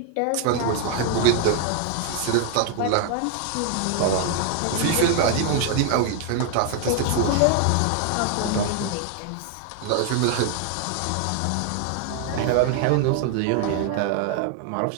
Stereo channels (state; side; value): different; both; correlation 0.00